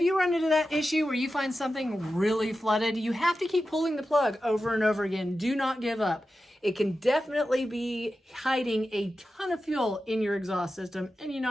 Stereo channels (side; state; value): both; normal; correlation 0.92